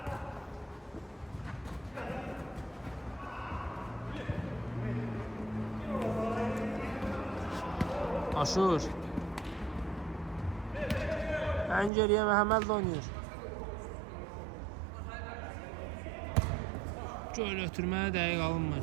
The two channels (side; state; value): left; drops out; at 11.9 s